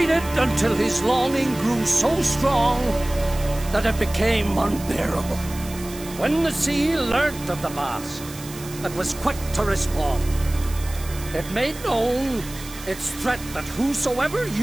until his longing grew so strong that it became unbearable. When the sea learnt of the mask, it was quick to respond. It made known its threat that whosoever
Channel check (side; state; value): right; noise; hiss, 15 dB below the sound